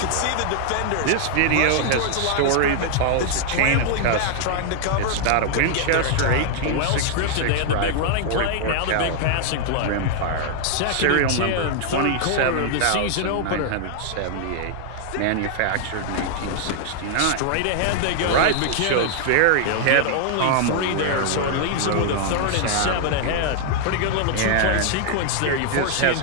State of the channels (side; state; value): both; different; correlation 0.00